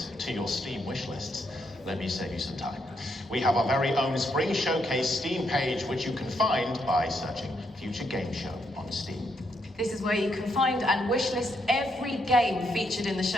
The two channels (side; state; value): both; normal; correlation 0.77